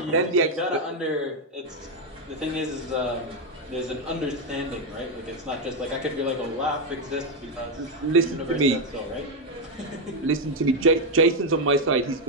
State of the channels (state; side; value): normal; both; correlation 0.04